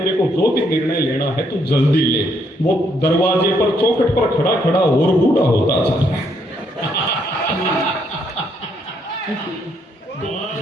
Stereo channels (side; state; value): both; normal; correlation 0.72